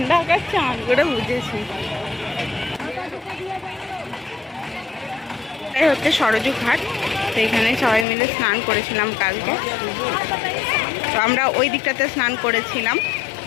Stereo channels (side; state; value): right; drops out; at 8.1 s